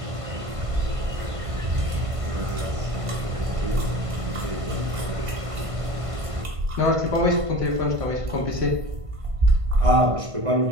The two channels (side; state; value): left; late; 1.5 ms